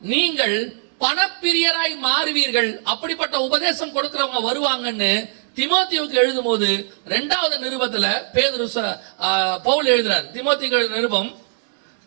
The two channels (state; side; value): silent; left; digital silence